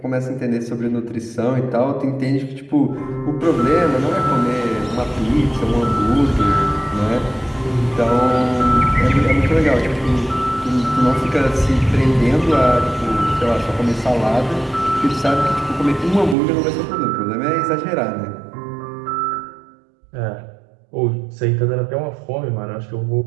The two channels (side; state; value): left; drops out; at 16.4 s